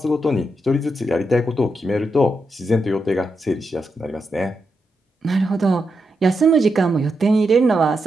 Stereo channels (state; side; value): normal; both; correlation 0.84